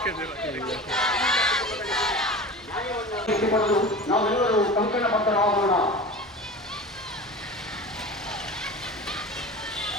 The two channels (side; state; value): both; normal; correlation 0.34